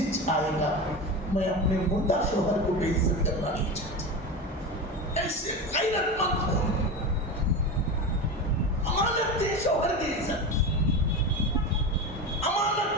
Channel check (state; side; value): normal; both; correlation 0.24